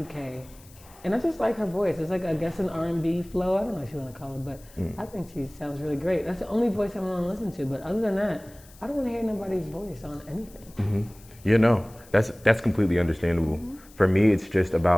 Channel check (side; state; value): left; noise; hiss, 24 dB below the sound